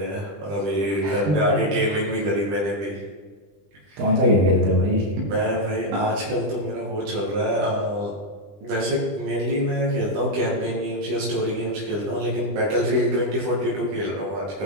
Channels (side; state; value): left; late; 20 ms